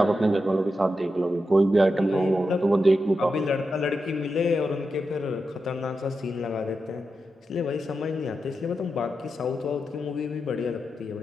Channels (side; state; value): both; normal; correlation 0.88